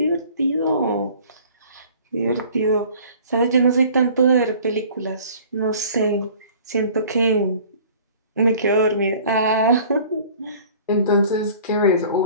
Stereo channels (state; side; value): inverted; both; correlation -0.49